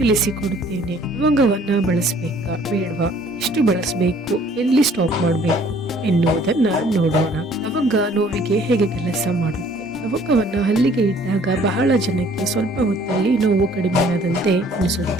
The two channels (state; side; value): normal; both; correlation 0.57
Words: ಲವಂಗವನ್ನ ಬಳಸಬೇಕಾ ಬೇಡವಾ, ಎಷ್ಟು ಬಳಸಬೇಕು, ಎಲ್ಲಿ ಸ್ಟಾಪ್ ಮಾಡಬೇಕು ಎನ್ನುವುದನ್ನ ನೋಡೋಣ. ಲವಂಗ ನೋವಿಗೆ ಹೇಗೆ ಕೆಲಸ ಮಾಡುತ್ತೆ? ಲವಂಗವನ್ನ ಹಲ್ಲಿಗೆ ಇಟ್ಟಾಗ ಬಹಳ ಜನಕ್ಕೆ ಸ್ವಲ್ಪ ಹೊತ್ತಲ್ಲಿ ನೋವು ಕಡಿಮೆಯಾದಂತೆ